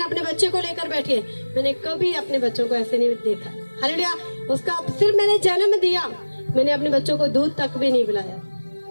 बच्चे को लेकर बैठी है, मैंने कभी अपने बच्चों को ऐसे नहीं देखा। हालेलुया। उसका सिर्फ मैंने जन्म दिया, मैंने अपने बच्चों को दूध तक भी नहीं पिलाया।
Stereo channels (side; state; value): both; inverted; correlation -1.00